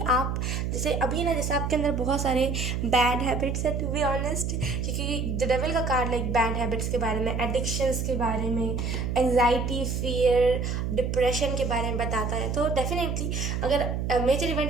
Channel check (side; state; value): right; noise; hum, 1 dB below the sound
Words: आप जैसे अभी ना, जैसे आपके अंदर बहुत सारे बैड हैबिट्स है, टू बी ऑनेस्ट, क्योंकि द डेविल का कार्ड लाइक बैड हैबिट्स के बारे में, एडिक्शंस के बारे में, एंजाइटी, फियर, डिप्रेशन के बारे में बताता है। तो डेफिनेटली अगर मेजर